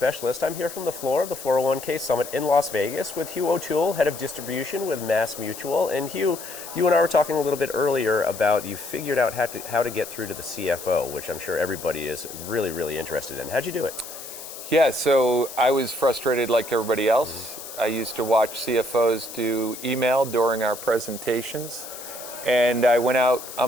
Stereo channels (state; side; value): noise; left; hiss, 12 dB below the sound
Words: I'm here from the floor of the 401k Summit in Las Vegas with Hugh O'Toole, Head of Distribution with Mass Mutual. And Hugh, you and I were talking a little bit earlier about you figured out how to get through to the CFO, which I'm sure everybody is really, really interested in. How'd you do it? Yeah, so I was frustrated like everybody else. I used to watch CFOs do email during our presentations. And I went out on